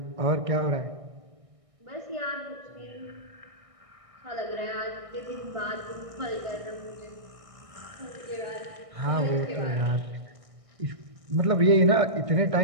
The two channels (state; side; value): late; left; 1.6 ms